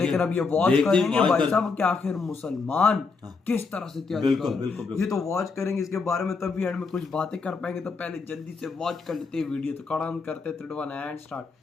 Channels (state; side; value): quieter; right; 4.6 dB